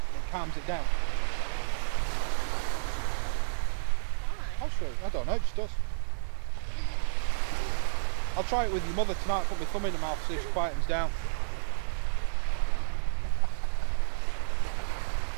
calms it down. Why? I'll show you. I don't know, it just does. I'll try it with your mother tonight, put my thumb in her mouth, see if she quietens down.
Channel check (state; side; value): silent; left; digital silence